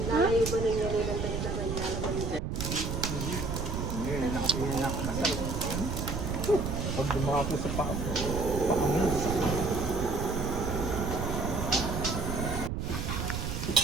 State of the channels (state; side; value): noise; right; rumble, 2 dB below the sound